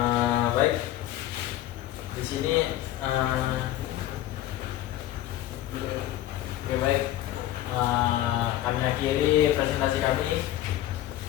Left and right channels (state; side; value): quieter; right; 13.7 dB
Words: Baik. Di sini oke, baik. Kami akhiri presentasi kami.